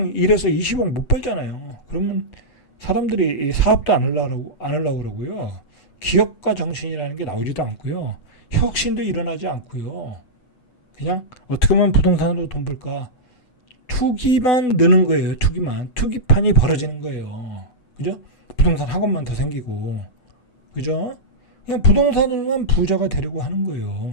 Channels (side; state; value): right; late; 8.0 ms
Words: 일해서 20억 못 벌잖아요. 그러면 사람들이 사업도 안 하려고 그러고요. 기업가 정신이라는 게 나오지도 않고요. 혁신도 일어나지 않고요. 그냥 어떻게 하면 부동산으로 돈 벌까? 투기만 느는 거예요. 투기판이 벌어지는 거예요. 그죠? 부동산 학원만 더 생기고. 그죠? 그냥 부동산으로만 부자가 되려고 하는